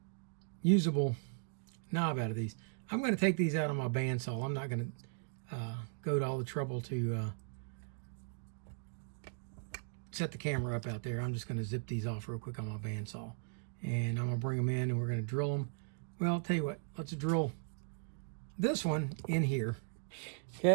usable knob out of these. I'm going to take these out on my bandsaw. I'm not going to go to all the trouble to set the camera up out there. I'm just going to zip these off real quick on my bandsaw. And I'm going to bring them in and we're going to drill them. Well, I'll tell you what, let's drill this one in here.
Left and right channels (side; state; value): left; silent; digital silence